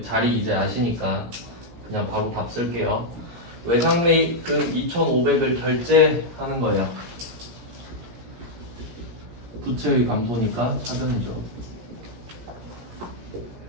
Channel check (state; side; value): late; left; 17 ms